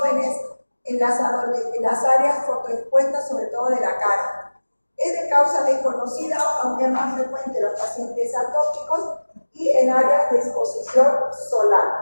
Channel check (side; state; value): both; inverted; correlation -1.00